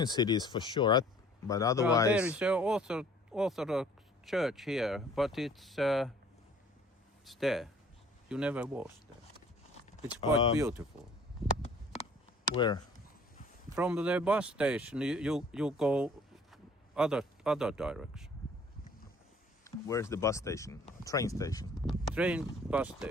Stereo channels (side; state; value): both; normal; correlation 0.54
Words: cities for sure, but otherwise... There is an Orthodox church here, but it's there. You never was there. It's quite beautiful. Where? From the bus station, you go other direction. Where's the bus station? Train station? Train bus